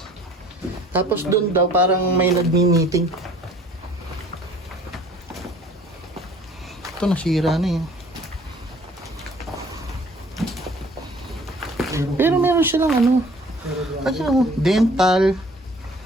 Tapos doon daw parang may nagmi-meeting. Ito nasira na yun. Pero meron silang ano. Kasi oh, dental,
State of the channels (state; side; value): normal; both; correlation 0.53